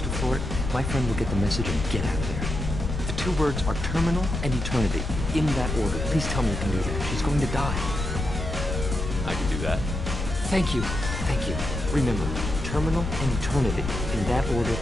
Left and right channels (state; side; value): noise; left; rumble, 4 dB below the sound